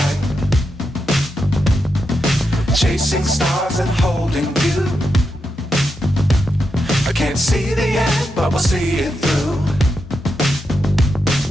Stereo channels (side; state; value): both; normal; correlation 0.86